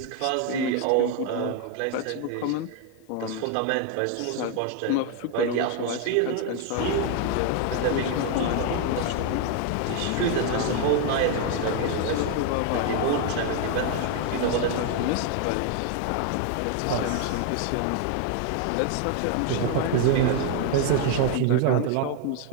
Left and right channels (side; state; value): both; different; correlation 0.01